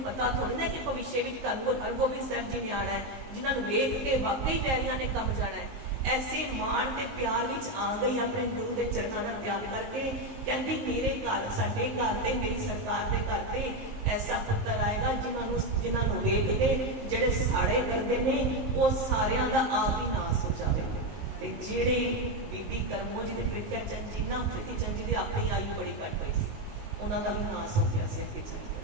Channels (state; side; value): late; left; 19 ms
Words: पता थोड़ी ना कि भविष्य में धन हरगोबिंद साहब जी ने आना है, जिन्होंने वेख के वाकई बैरियां ने कम जाना है। ऐसे मान के प्यार विच आ गई अपने गुरु के चरणों का त्याग करके, कहती मेरे घर साडे घर ते मेरी सरकार के घर ते ऐसा पुत्र आएगा जिन्होंने वेख के जिहड़े साड़े करते हैं वो सारियां दा आप ही नाश हो जाएगा। ते जिहड़े बीबी करमो जी के प्रीत्या चंद जी ना प्रीति चंद जी की अपनी आयु बड़ी घट हुई सी, उन्हों का भी नाश हो गया से अगे चल गया।